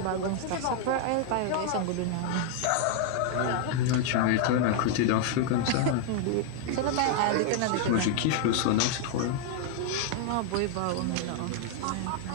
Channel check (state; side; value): different; both; correlation 0.00